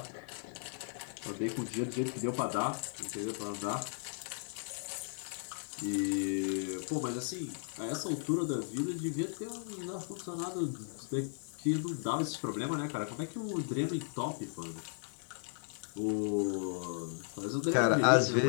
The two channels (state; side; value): silent; right; 54 dB below the other